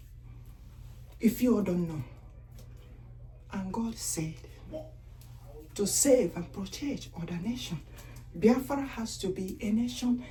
If you all don't know. And God said to save and protect other nations. Biafra has to be a nation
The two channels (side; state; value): both; identical; correlation 1.00